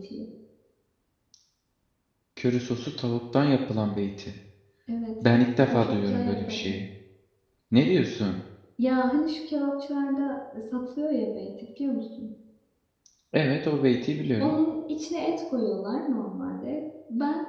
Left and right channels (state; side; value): identical; both; correlation 1.00